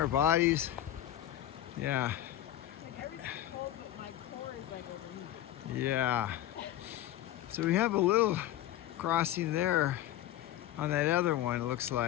bodies. Yeah. Like everything's cold, but my core is like overheated. Yeah. So we have a little crossing there on that other one, it looks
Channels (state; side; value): quieter; right; 13.1 dB